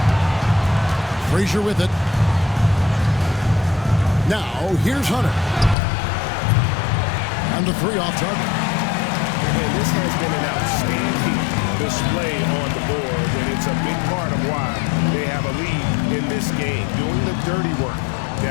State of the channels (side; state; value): right; drops out; at 5.8 s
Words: Frazier with it. Now here's Hunter. And the three off target. And this has been an outstanding display on the board, and it's a big part of why they have a lead in this game, doing the dirty work